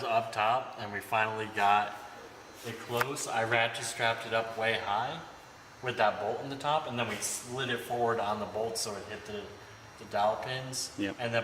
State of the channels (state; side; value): identical; both; correlation 1.00